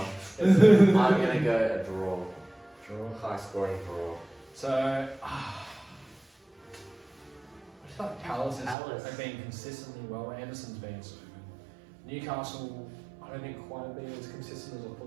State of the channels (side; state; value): left; drops out; at 8.8 s